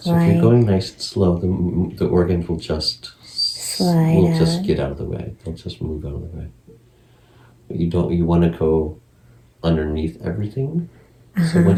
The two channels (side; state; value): both; identical; correlation 1.00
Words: slide. you're going nice and slow, the organs will just Slide get out of the way. They'll just move out of the way. But you want to go underneath everything. So